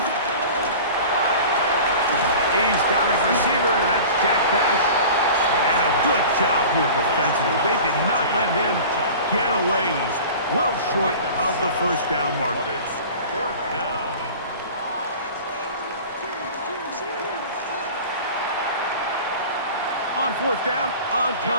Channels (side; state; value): both; inverted; correlation -0.39